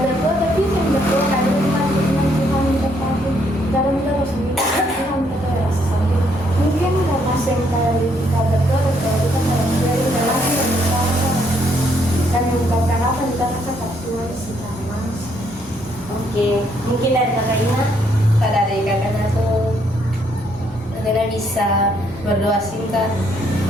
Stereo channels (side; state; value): both; normal; correlation 0.71